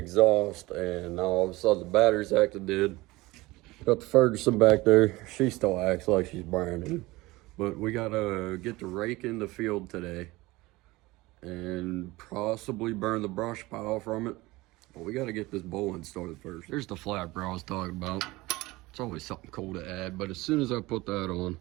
and now all of a sudden the battery's acting dead. Got the Ferguson back there. She still acts like she's brand new. But we gotta get the rake in the field today and possibly burn the brush pile from it. But we gotta get this bowling started first. There's the flapper I was talking about. It's always something cool to add, but as soon as I put that on,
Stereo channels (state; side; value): quieter; left; 20.6 dB